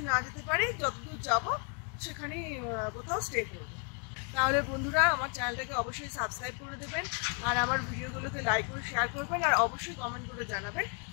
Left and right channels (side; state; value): right; quieter; 38.2 dB